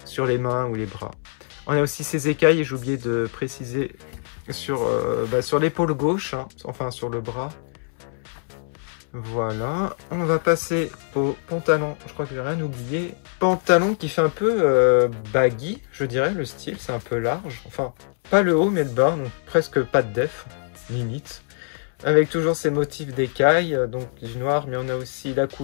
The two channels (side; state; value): right; silent; 63 dB below the other